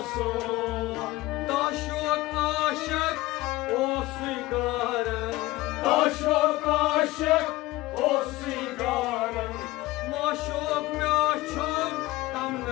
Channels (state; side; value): quieter; right; 18.9 dB